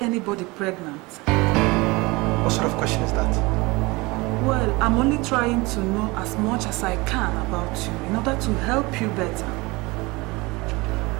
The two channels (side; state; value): left; quieter; 23.8 dB